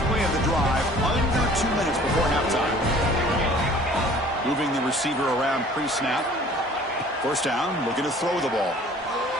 play of the drive, under 2 minutes before halftime. Moving the receiver around pre-snap. First down, looking to throw the ball.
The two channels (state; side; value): normal; both; correlation 0.51